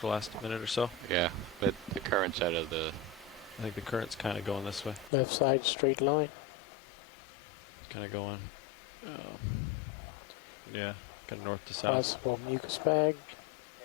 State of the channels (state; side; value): drops out; right; at 5.1 s